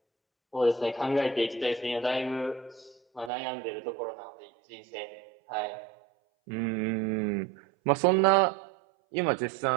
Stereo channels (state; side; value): drops out; left; at 3.3 s